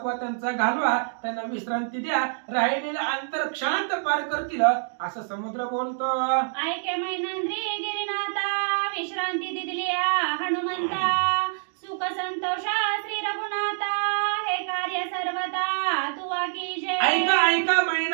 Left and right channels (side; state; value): left; silent; digital silence